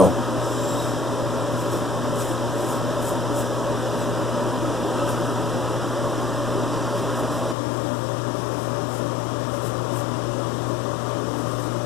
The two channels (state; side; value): drops out; right; at 7.6 s